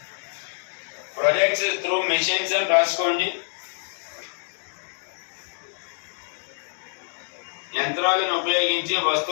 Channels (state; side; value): silent; right; 57 dB below the other